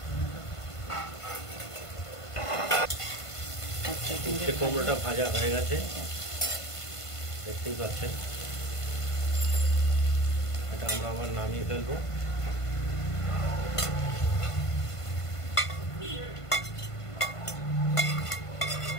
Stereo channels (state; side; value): late; right; 1.5 ms